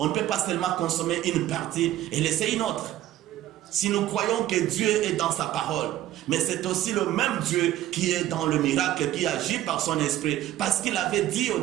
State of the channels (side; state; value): left; quieter; 13.5 dB